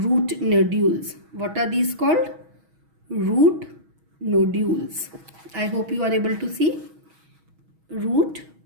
nodules. What are these called? Root nodules. I hope you are able to see root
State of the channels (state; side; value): late; left; 6.3 ms